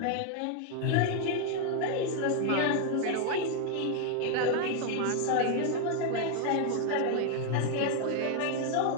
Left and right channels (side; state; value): both; different; correlation 0.00